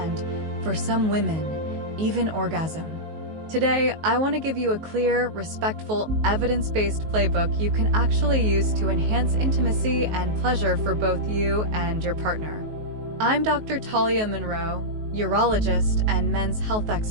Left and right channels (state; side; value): late; left; 19 ms